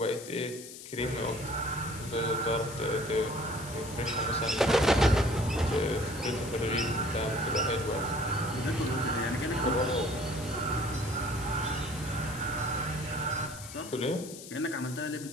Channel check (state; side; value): noise; left; hiss, 13 dB below the sound